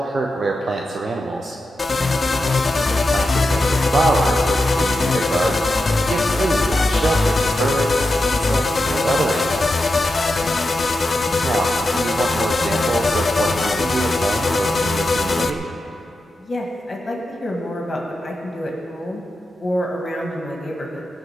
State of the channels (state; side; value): normal; both; correlation 0.89